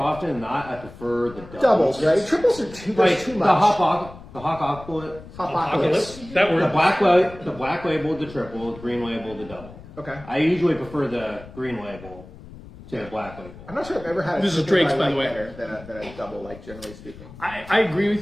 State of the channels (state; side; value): noise; left; rumble, 17 dB below the sound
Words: than not. I prefer the Doubles, right? Triples are too much. The Hopocalypse. Hopocalypse. That word. The black label, the triple, the green label, the double. Okay. I usually prefer the green label to the black label. I'm not sure I've ever had. This is triple Drake's, I by like the way. better than a double, like generally speaking. I agree